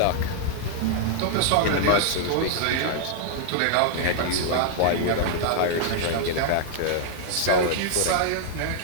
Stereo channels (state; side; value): different; both; correlation -0.01